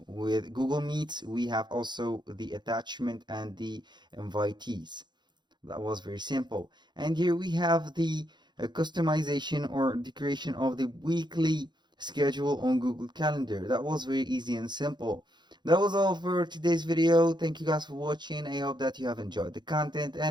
with Google Meets. We have also the attachment and the invitees. That was very simple. And here we have the customization or the creation of the weekly schedule on Google Calendar. That was very easy and simple. That was all for today's video. Thank you guys for watching. I hope that you have enjoyed the content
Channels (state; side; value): late; left; 0.21 ms